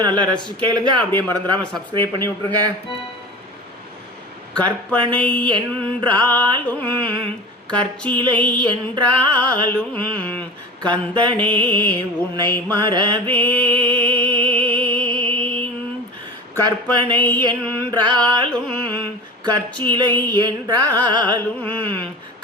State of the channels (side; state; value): both; normal; correlation 0.33